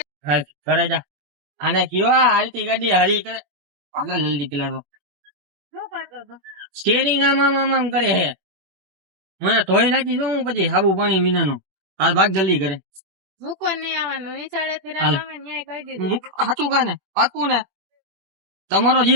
હાલ ઘરે જા. આને કયો હાલતી ગાડી હરી કરે આગળ જલ્દી પેલા સ્ટેરિંગ આમ આમ આમ આમ કરે હે. મને ધોઈ નાખી શું પછી સાબુ પાણી વિનાનો. હાલ ભાગ જલ્દી કરે. સાચું કા ને પાકું ને તમારો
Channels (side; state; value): left; late; 21 ms